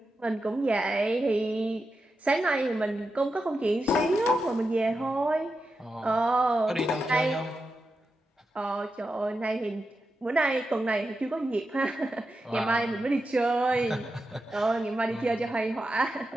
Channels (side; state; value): both; normal; correlation 0.89